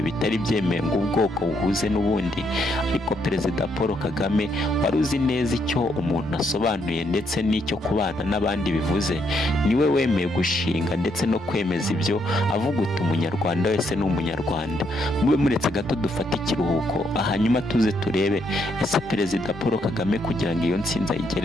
bitari byemewe ngo ubwoko buhuze n'ubundi, ariko Perezida Paul Kagame wari uzi neza icyo umuntu asobanuye ndetse n'icyo kubana n'abandi bivuze, niwe wemeye gushinga ndetse no kwemeza ibyo, avuga uti umunyarwanda wese ni umunyarwanda. Mube muretse gato dufate ikiruhuko, hanyuma tuze turebe ese Perezida Paul Kagame kugira ngo iyo ntsinzi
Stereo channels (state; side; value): normal; both; correlation 0.75